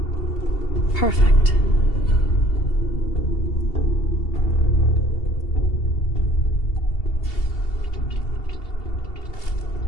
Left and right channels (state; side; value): late; right; 2.7 ms